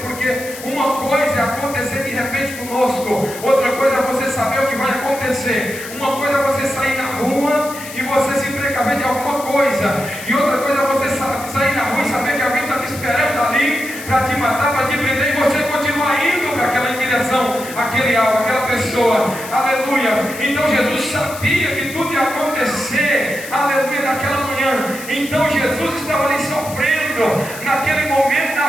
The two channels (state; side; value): noise; left; hiss, 13 dB below the sound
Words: porque uma coisa é acontecer de repente conosco, outra coisa é você saber o que vai acontecer. Uma coisa é você sair na rua e você se precaver de alguma coisa, e outra coisa é você sair na rua e saber que alguém está te esperando ali para te matar, para te prender, e você continuar indo para aquela direção, aquele alvo, aquela pessoa, aleluia. Então Jesus sabia que tudo ia acontecer, aleluia, naquela manhã. Então Jesus estava ali sofrendo naquele momento da